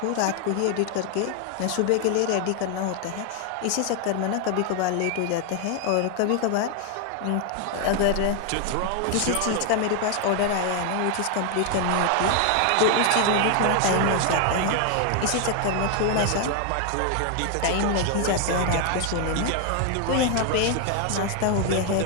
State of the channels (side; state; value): both; different; correlation 0.00